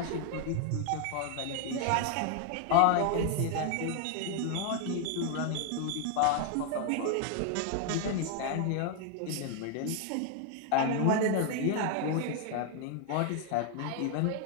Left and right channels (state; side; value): different; both; correlation 0.00